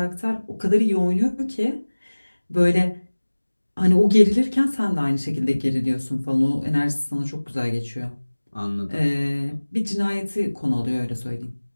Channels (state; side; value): inverted; both; correlation -1.00